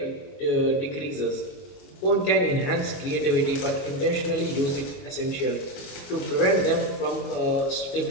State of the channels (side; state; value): right; late; 22 ms